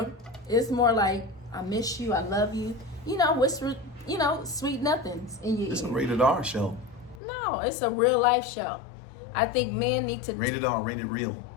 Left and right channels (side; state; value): right; drops out; at 7.2 s